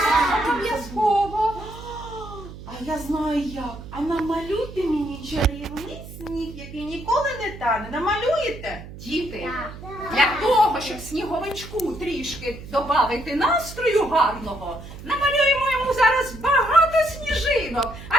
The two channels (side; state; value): right; noise; hum, 14 dB below the sound